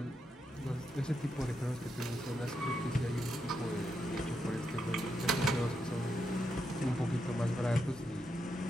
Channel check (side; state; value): both; normal; correlation 0.83